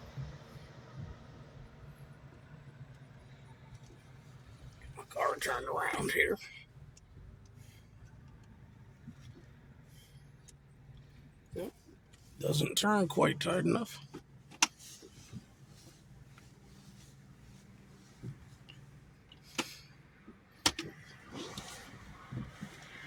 My car turned around here. Yep. Doesn't turn quite tight enough.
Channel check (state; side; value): identical; both; correlation 1.00